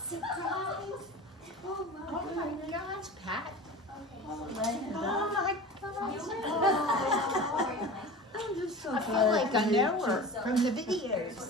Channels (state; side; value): normal; both; correlation 0.34